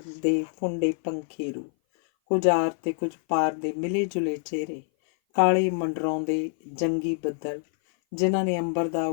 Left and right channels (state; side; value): silent; right; 58 dB below the other